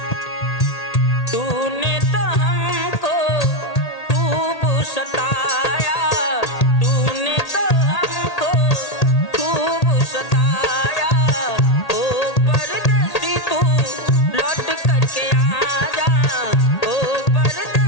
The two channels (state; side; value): late; right; 1.8 ms